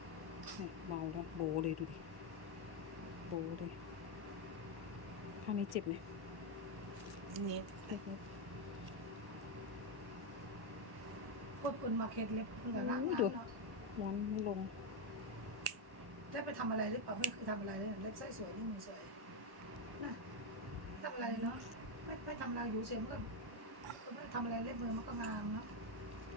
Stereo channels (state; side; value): late; left; 1.1 ms